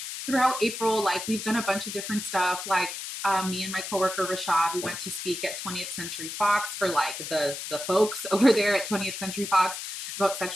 throughout April, like we've done a bunch of different stuff. Like me and my coworker Rashad, we went to speak at 20th Century Fox for like the folks over there at 20th Century Fox about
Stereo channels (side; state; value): left; noise; hiss, 7 dB below the sound